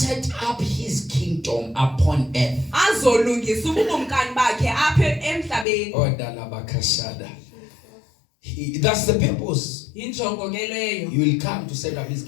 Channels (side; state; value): right; drops out; at 5.7 s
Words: up his kingdom upon earth. Oh, Dalabakashada. That's the purpose. Injongo ke leyo. He will come to set up his